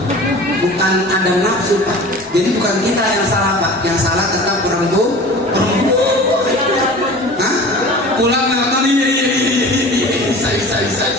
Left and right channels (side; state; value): both; normal; correlation 0.39